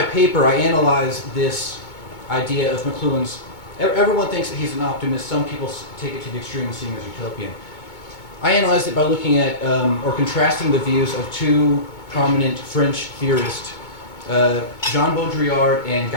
paper, I analyze this idea of McLuhan's. Everyone thinks that he's an optimist. Some people take it to the extreme and see him as utopian. I analyzed it by looking at or contrasting the views of two prominent French theorists, Jean Baudrillard and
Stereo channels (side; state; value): right; late; 2.2 ms